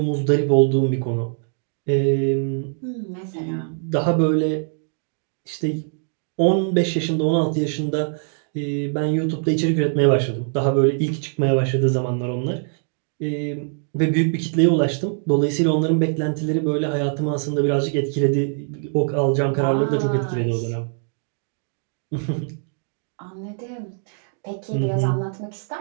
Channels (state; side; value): silent; left; 60 dB below the other